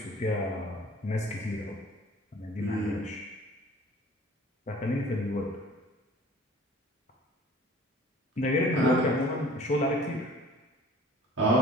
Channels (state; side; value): normal; both; correlation 0.49